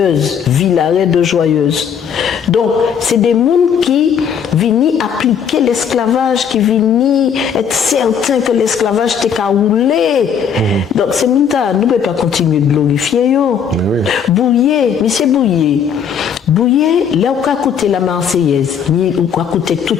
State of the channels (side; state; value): right; quieter; 7.4 dB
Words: Villaret de Joyeuse. Donc, c'est des mondes qui viennent appliquer l'esclavage, qui viennent être certains que l'esclavage t'a roulé. Donc, c'est mondes-là, nous ne pouvons pas continuer de glorifier yo. Bouillet, M. Bouillet, là où a coûté la Marseillaise, où a coûté tous